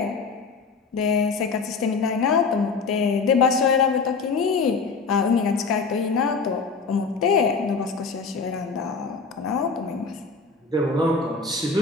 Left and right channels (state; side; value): quieter; right; 4.7 dB